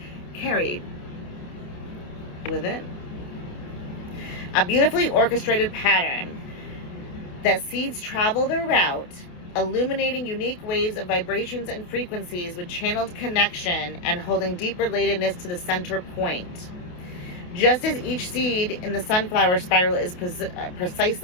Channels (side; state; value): right; late; 28 ms